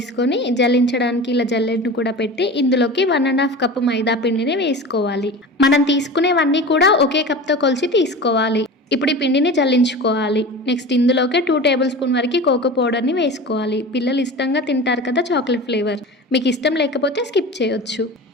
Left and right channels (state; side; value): normal; both; correlation 0.33